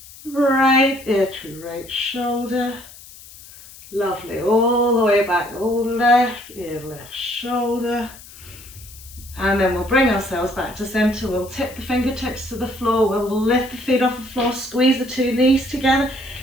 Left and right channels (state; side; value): noise; left; hiss, 19 dB below the sound